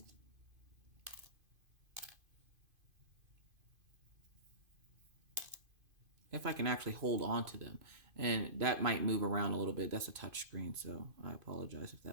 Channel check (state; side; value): late; left; 2.5 ms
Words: If I can actually hold on to them. And that might move around a little bit. That's a touch screen, so I apologize if